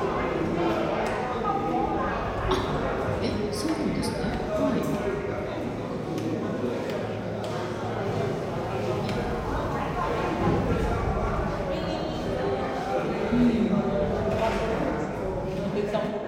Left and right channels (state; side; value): identical; both; correlation 1.00